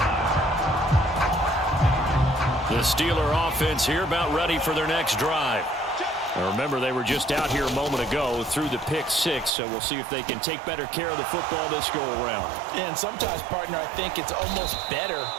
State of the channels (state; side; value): drops out; left; at 9.5 s